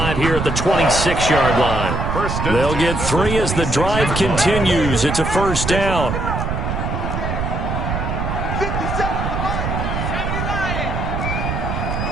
here at the 26-yard line. They'll get 3 as the drive continues. It's a 1st down.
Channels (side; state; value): right; noise; rumble, 2 dB below the sound